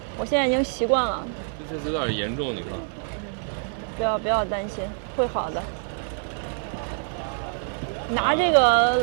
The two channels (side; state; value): left; silent; 61 dB below the other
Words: 我现在已经习惯了。就这次有点严重，你看。不要担心，会好的。拿这